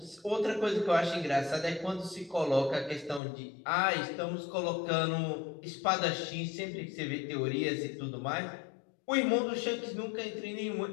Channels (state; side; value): drops out; right; at 3.2 s